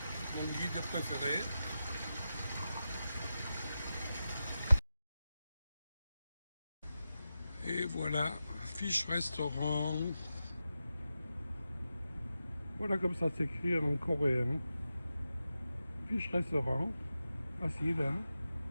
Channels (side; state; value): both; inverted; correlation -0.91